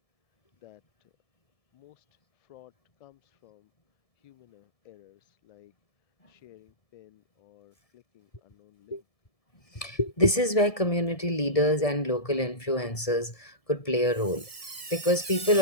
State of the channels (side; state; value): right; late; 1.7 ms